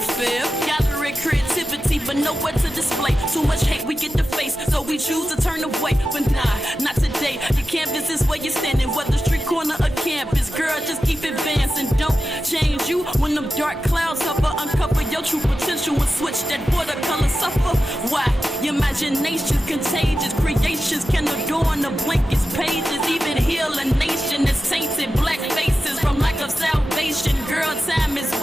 feel. Gathering creativity, but nowhere to display. Too much hate we get to face, so we choose to turn away. But nah, not today. Your canvas is where you're standing, whether street corner or campus. Girl, just keep advancing. Don't change you when them dark clouds hover. Uncover your true potential and switch that watercolor suffer. Why? Your imagination's contagious. Creations can adorn the blankest pages. Even heal a nation that's tainted. Black faces from lack of salvation. Girl, time is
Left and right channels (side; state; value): both; normal; correlation 0.93